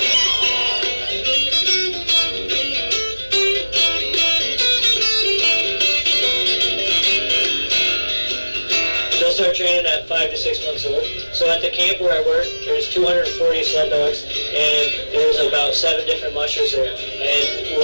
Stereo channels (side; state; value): both; inverted; correlation -1.00